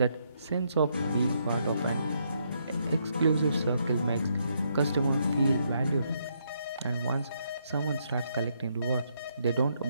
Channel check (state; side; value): inverted; both; correlation -0.75